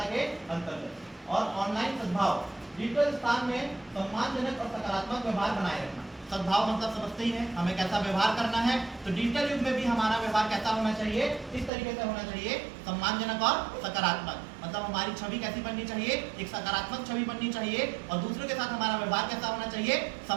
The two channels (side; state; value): left; drops out; at 11.7 s